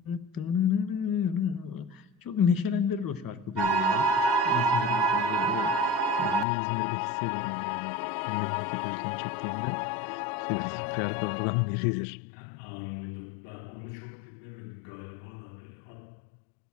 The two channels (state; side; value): drops out; right; at 6.5 s